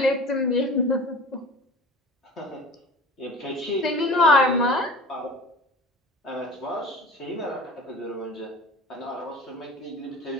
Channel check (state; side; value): normal; both; correlation 0.39